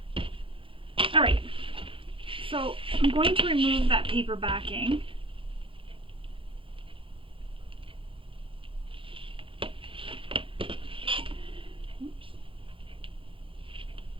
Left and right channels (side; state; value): left; late; 0.25 ms